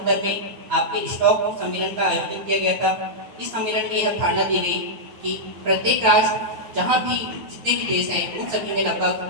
में आपके स्टॉक सम्मेलन का आयोजन किया गया था। इस सम्मेलन में यह धारणा दी गई कि प्रत्येक राष्ट्र जहाँ भी जितने भी देश हैं उन सभी में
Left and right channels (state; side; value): late; left; 9.4 ms